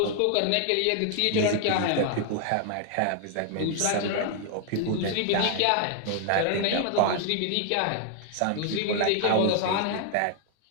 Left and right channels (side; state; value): both; different; correlation 0.00